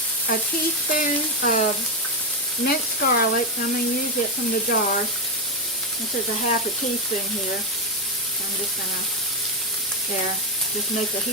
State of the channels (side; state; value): both; normal; correlation 0.07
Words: a teaspoon of minced garlic. I'm going to use it from the jar. This is a half a teaspoon here. I'm just going to, just make a